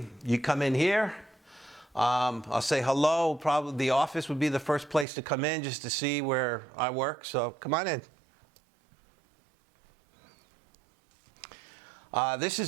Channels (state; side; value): drops out; left; at 5.1 s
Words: you come in here. I'll say hello. Probably the office would be the first place to come in just to see where I work. So come on in. This